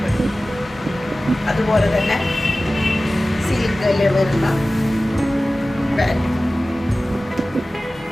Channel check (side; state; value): both; normal; correlation 0.96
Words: അതുപോലെ തന്നെ സിൽക്കിൽ വരുന്ന പാൻറ്.